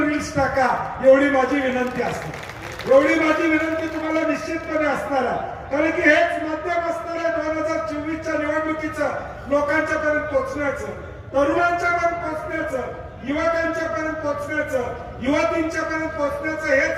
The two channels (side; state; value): both; identical; correlation 1.00